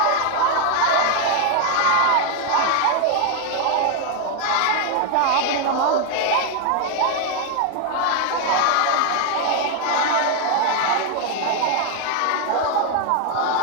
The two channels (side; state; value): both; different; correlation 0.01